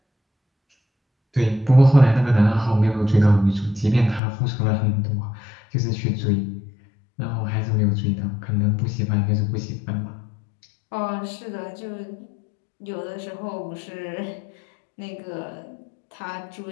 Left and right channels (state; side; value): drops out; right; at 4.2 s